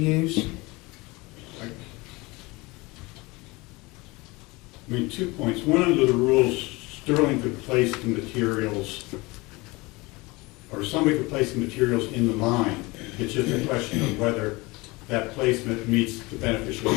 I mean, 2 points. One, under the rules, Sterling could place the materials, or somebody could place the materials in the mine. It's just a question of whether that placement meets the beneficial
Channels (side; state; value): right; quieter; 23.8 dB